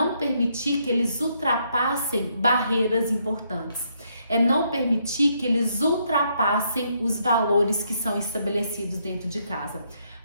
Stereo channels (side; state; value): both; inverted; correlation -0.74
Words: permitir que eles ultrapassem barreiras importantes. É não permitir que eles ultrapassem os valores que são estabelecidos dentro de casa.